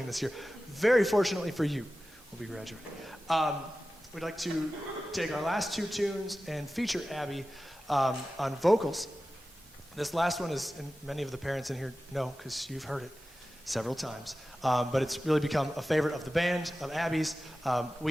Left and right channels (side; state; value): both; normal; correlation 0.95